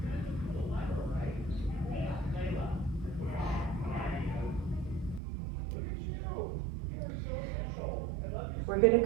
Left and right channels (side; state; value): left; drops out; at 5.2 s